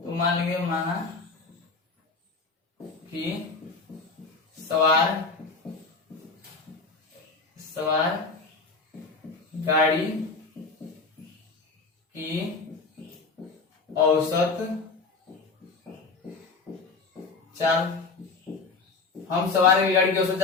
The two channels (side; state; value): right; quieter; 4.1 dB